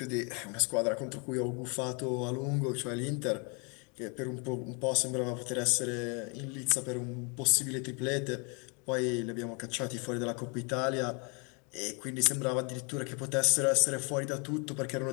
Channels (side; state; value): right; quieter; 34.2 dB